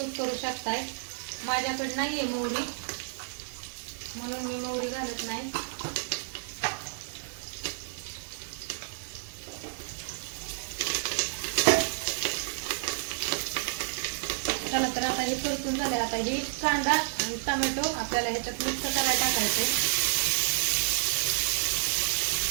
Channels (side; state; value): left; silent; digital silence